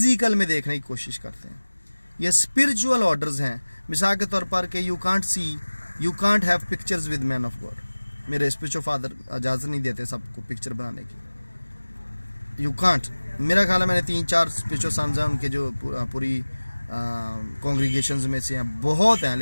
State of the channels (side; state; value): both; inverted; correlation -1.00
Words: में देखने की कोशिश करते हैं। ये स्पिरिचुअल ऑर्डर्स हैं। मिसाल के तौर पर कि you can't have pictures with man of God. मेरे स्पिरिचुअल फादर इजाज़त नहीं देते सबको पिक्चर बनाने की। You can't. मेरा ख्याल है मैंने 3-4 स्पिरिचुअल सन्स हैं उनके जो पूरी कॉन्ग्रीगेशंस में से हैं, बहुत हैं,